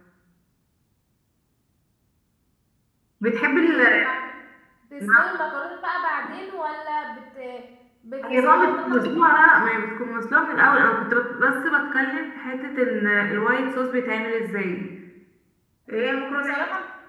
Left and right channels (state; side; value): identical; both; correlation 1.00